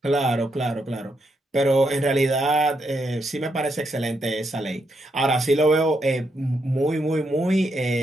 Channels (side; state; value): both; normal; correlation 0.80